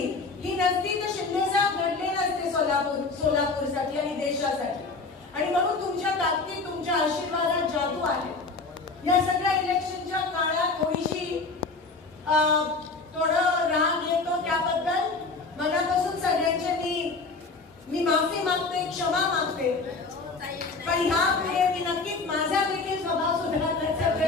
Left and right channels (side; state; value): right; quieter; 3.9 dB